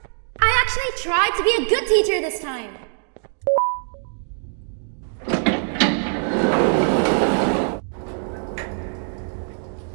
I actually tried to be a good teacher this time.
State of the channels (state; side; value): silent; left; 64 dB below the other